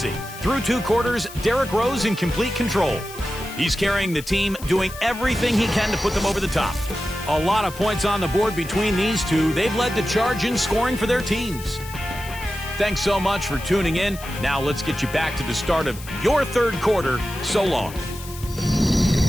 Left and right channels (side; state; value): left; noise; hiss, 16 dB below the sound